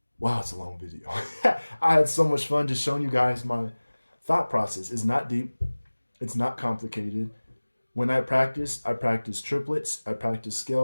it's a long video. I had so much fun just showing you guys my thought process. It's not deep. It's not complicated. When I practice triplets, I practice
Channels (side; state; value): both; inverted; correlation -1.00